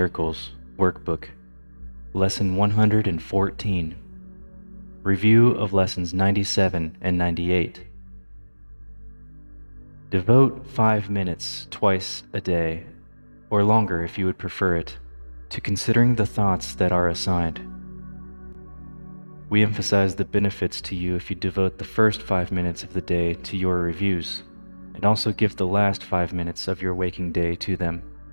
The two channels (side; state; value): both; inverted; correlation -1.00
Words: Workbook, Lesson 114, Review of Lessons 97 and 98. Devote 5 minutes twice a day, or longer if you would prefer it, to considering the thoughts that are assigned. We emphasize the benefits to you if you devote the first 5 minutes of the day to your reviews, and also give the last 5 minutes of your waking day to them.